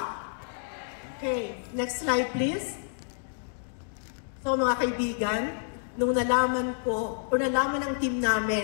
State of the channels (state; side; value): silent; right; digital silence